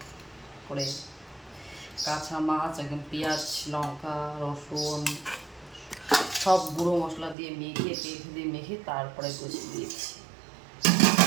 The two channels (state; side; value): drops out; left; at 7.4 s